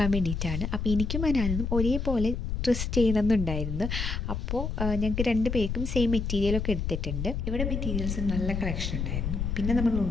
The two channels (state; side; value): noise; left; rumble, 2 dB below the sound